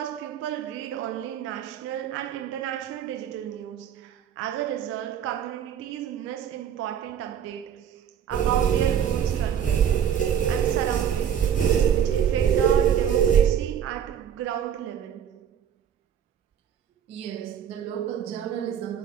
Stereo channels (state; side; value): quieter; left; 8.9 dB